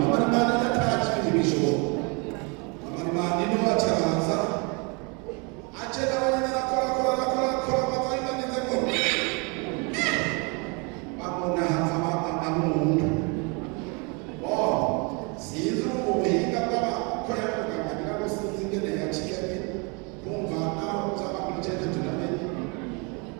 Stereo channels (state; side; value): quieter; left; 31.8 dB